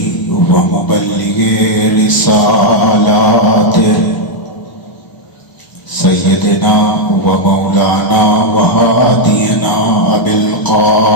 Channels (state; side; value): late; right; 1.2 ms